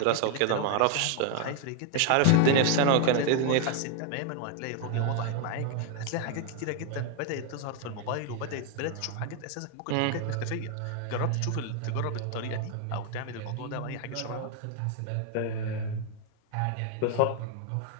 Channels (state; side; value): different; both; correlation 0.00